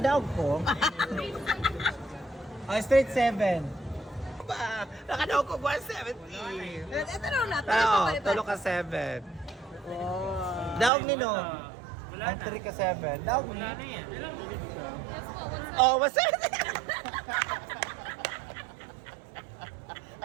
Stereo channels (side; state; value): left; drops out; at 10.9 s